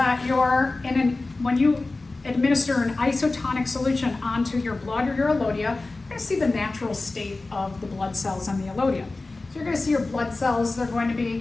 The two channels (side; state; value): right; quieter; 3.3 dB